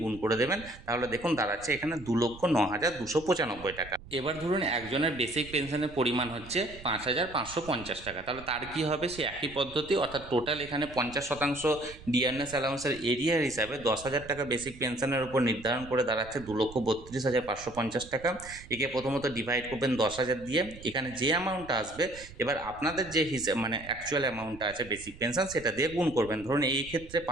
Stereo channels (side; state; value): right; noise; rumble, 18 dB below the sound